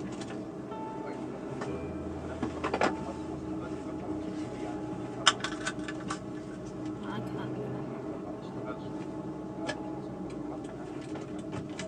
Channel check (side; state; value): both; identical; correlation 1.00